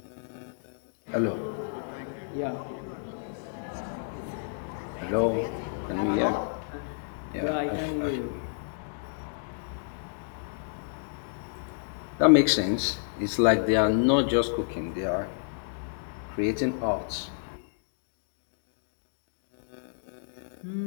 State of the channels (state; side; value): silent; right; digital silence